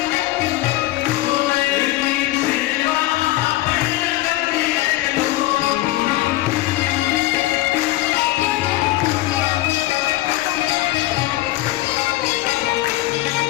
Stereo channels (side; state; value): right; quieter; 17.4 dB